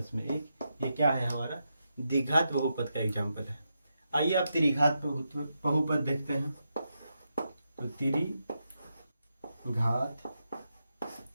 में 1, ये क्या है? हमारा द्विघात बहुपद का एग्जाम्पल है। आइए आप त्रिघात बहुपद देखते हैं। तो त्रिघात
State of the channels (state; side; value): inverted; both; correlation -0.85